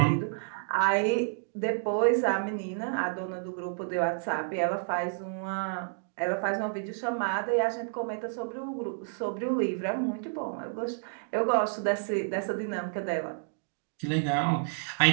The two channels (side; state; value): left; silent; digital silence